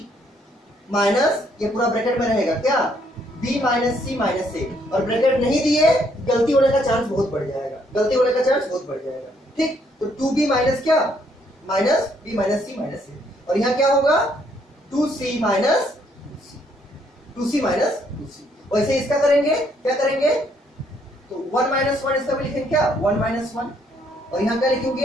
माइनस, ये पूरा ब्रैकेट में रहेगा क्या, B minus C minus A, और ब्रैकेट नहीं दिए गलती होने का चांस बहुत बढ़ जाएगा, गलती होने का चांस बहुत बढ़ जाएगा, ठीक। तो 2B माइनस क्या, minus B minus C minus A, और यहाँ क्या होगा 2C minus 2C minus 2C। वैसे इसका करेंगे, क्या करेंगे, तो 1 माइनस 1 इसका भी लिखेंगे क्या 1 माइनस 1, और यहाँ क्या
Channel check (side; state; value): both; normal; correlation 0.69